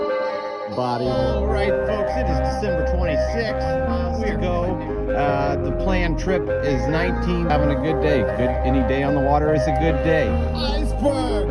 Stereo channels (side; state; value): both; identical; correlation 1.00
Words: Body. All right, folks, it is December 26th. We go. The planned trip is 19. Having a good day. Any day on the water is a good day.